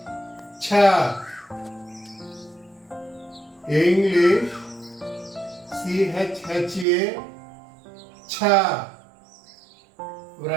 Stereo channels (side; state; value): left; drops out; at 6.9 s